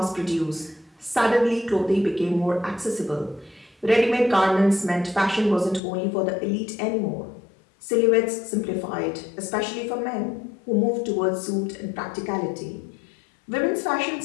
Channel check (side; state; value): right; drops out; at 5.8 s